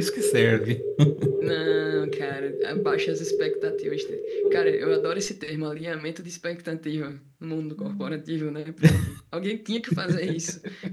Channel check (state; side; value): identical; both; correlation 1.00